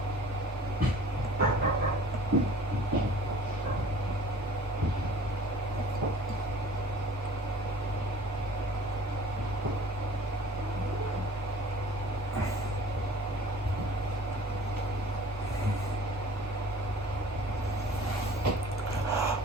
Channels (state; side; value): normal; both; correlation 0.48